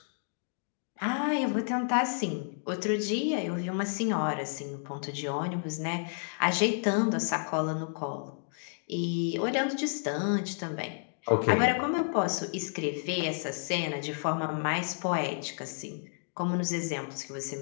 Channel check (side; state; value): right; silent; digital silence